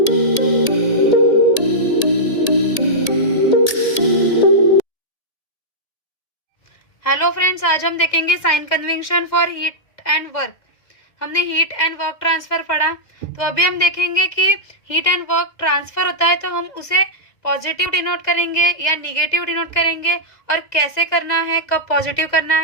फ्रेंड्स, आज हम देखेंगे sign convention for heat and work. हमने हीट एंड वर्क ट्रांसफर पढ़ा, तो अभी हम देखेंगे कि हीट एंड वर्क ट्रांसफर होता है तो हम उसे पॉजिटिव डिनोट करेंगे या निगेटिव डिनोट करेंगे, और कैसे करना है, कब पॉजिटिव करना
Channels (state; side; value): late; right; 1.8 ms